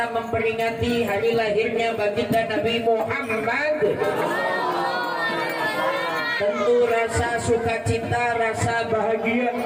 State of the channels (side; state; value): both; identical; correlation 1.00